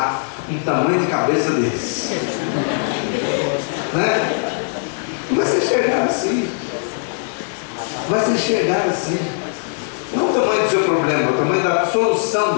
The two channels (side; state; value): right; silent; 66 dB below the other